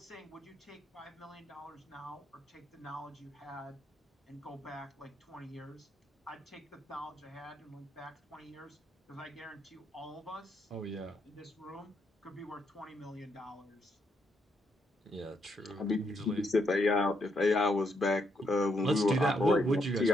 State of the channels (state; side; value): normal; both; correlation 0.77